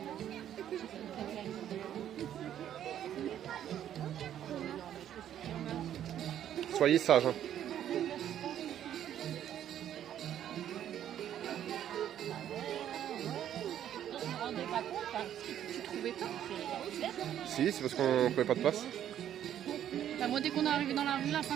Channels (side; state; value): left; quieter; 10.6 dB